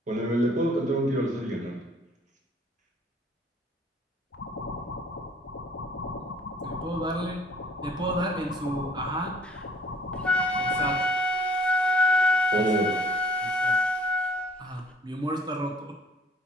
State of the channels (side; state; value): both; normal; correlation 0.56